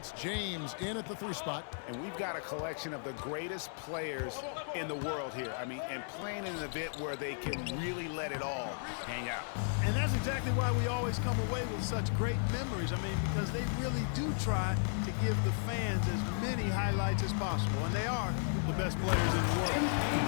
James in at the 3 spot. And we've got a collection of the greatest players in the world here. I mean, and playing in an event where they can really let it all hang out. And that's exactly why we always come away with such great memories. I mean, because they really do try to give the fans as many highlights as possible. And they are the best players in the world.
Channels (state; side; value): silent; right; 54 dB below the other